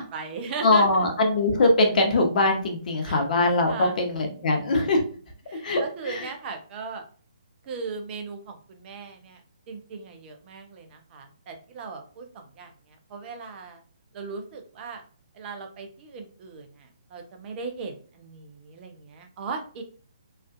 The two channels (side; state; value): both; inverted; correlation -0.59